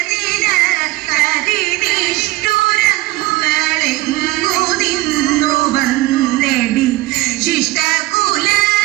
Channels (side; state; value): left; quieter; 18.9 dB